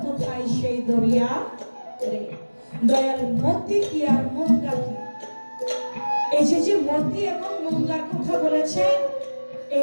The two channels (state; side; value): inverted; both; correlation -1.00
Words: কোথায় সেই দরিয়া রে। দয়াল মতি কি আর মুঙ্গা কি, এই যে মতি এবং মুঙ্গার কথা বলেছেন, এই